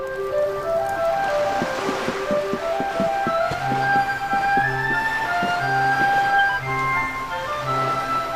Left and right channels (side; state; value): both; identical; correlation 1.00